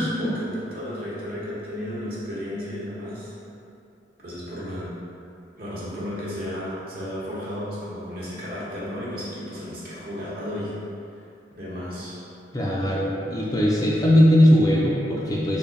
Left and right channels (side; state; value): both; normal; correlation 0.85